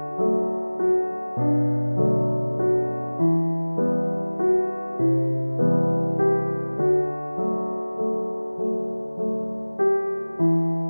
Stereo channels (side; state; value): both; inverted; correlation -1.00